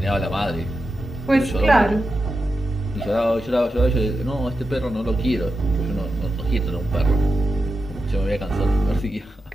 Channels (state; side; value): normal; both; correlation 0.89